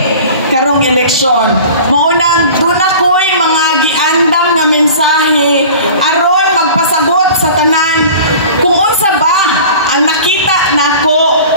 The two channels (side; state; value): both; inverted; correlation -0.41